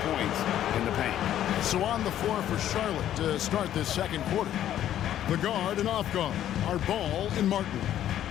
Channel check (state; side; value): quieter; right; 11.5 dB